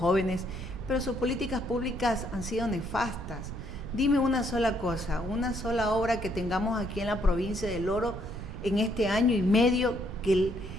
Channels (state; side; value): noise; right; rumble, 9 dB below the sound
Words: pero sus políticas públicas han sido nefastas. Dime una sola cosa, una sola obra que tengamos aquí en la provincia del Oro en este año y medio